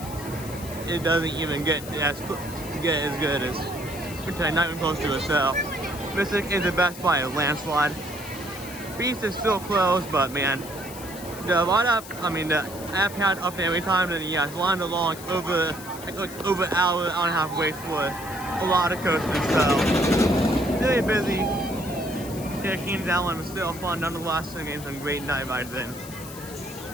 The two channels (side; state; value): left; noise; hiss, 15 dB below the sound